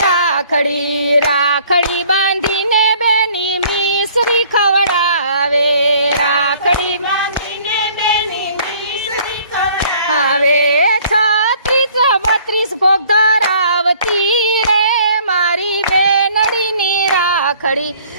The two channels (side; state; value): both; inverted; correlation -0.56